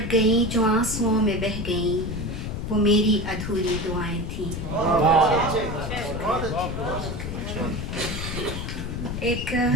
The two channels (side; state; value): left; noise; rumble, 4 dB below the sound